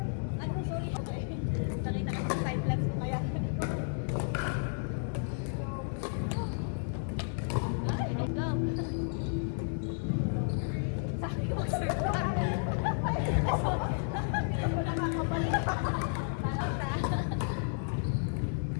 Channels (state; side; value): silent; right; 56 dB below the other